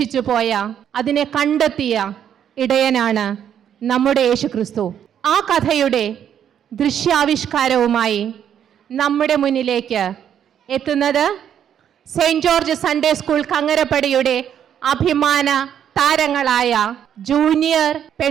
പോയ, അതിനെ കണ്ടെത്തിയ ഇടയനാണ് നമ്മുടെ യേശുക്രിസ്തു. ആ കഥയുടെ ദൃശ്യാവിഷ്കാരവുമായി നമ്മുടെ മുന്നിലേക്ക് എത്തുന്നത് സെയിൻറ് ജോർജ് സൺഡേ സ്കൂൾ കങ്ങരപ്പടിയുടെ അഭിമാന താരങ്ങളായ ജൂനിയർ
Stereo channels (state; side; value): quieter; left; 9.3 dB